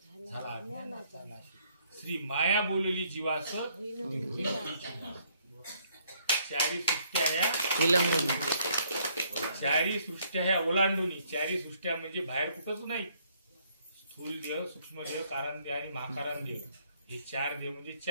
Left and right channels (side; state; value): both; inverted; correlation -0.67